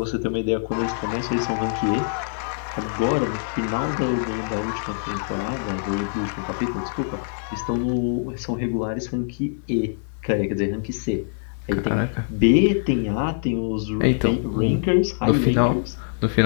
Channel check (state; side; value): silent; right; digital silence